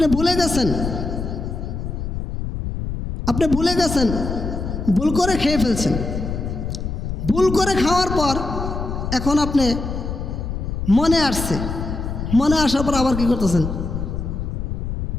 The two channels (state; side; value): noise; left; rumble, 4 dB below the sound